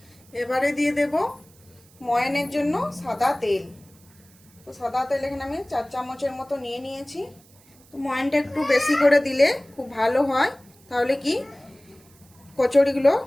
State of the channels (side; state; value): right; noise; hiss, 28 dB below the sound